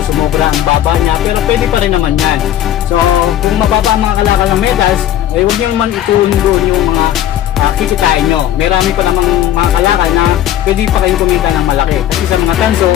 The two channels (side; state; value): right; quieter; 11.6 dB